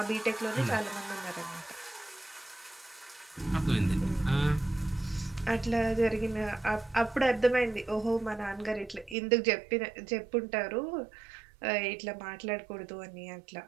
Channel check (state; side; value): drops out; left; at 9.2 s